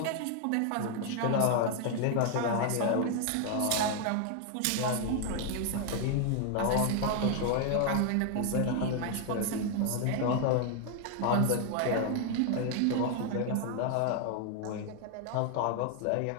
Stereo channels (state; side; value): different; both; correlation 0.00